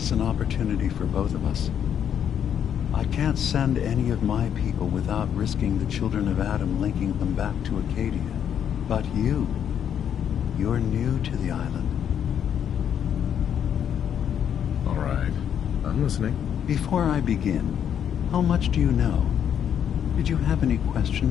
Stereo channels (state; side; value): quieter; right; 8.9 dB